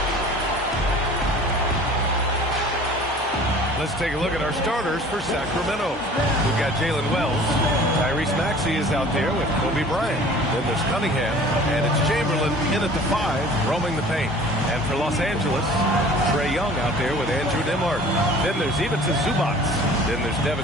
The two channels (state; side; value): normal; both; correlation 0.46